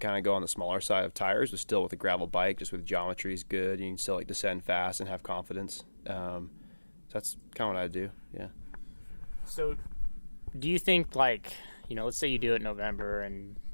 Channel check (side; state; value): both; inverted; correlation -1.00